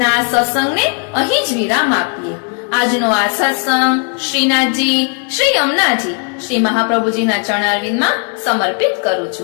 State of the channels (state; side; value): quieter; right; 37.2 dB